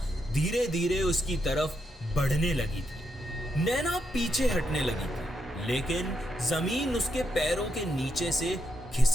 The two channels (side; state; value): both; normal; correlation 0.81